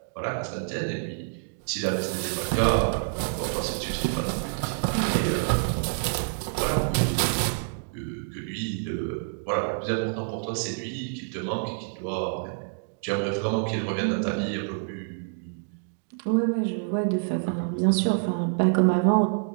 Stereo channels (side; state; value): left; silent; digital silence